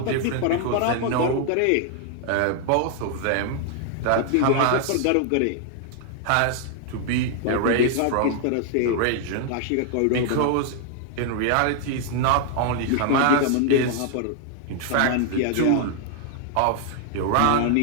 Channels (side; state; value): both; different; correlation 0.00